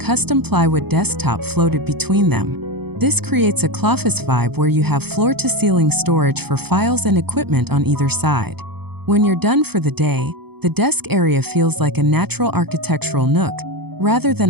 plywood desktop floated between them. This creates a office vibe where you have floor-to-ceiling storage for files and equipment on either side. When you're done for the day, the desk area feels like a natural architectural nook, rather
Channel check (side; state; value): left; late; 0.97 ms